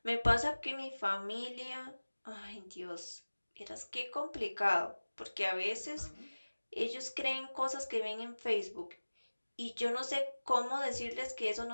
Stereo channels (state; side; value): inverted; both; correlation -1.00